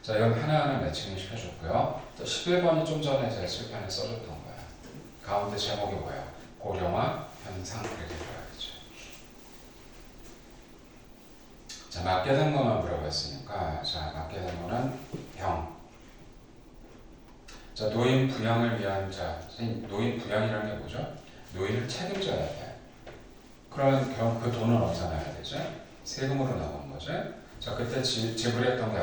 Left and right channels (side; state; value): both; identical; correlation 1.00